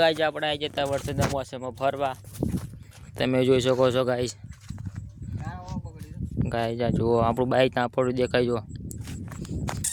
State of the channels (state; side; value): identical; both; correlation 1.00